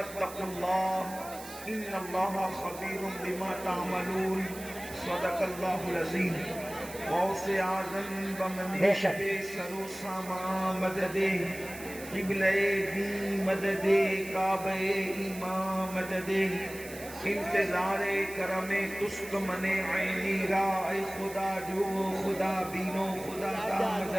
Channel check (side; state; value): right; noise; hiss, 14 dB below the sound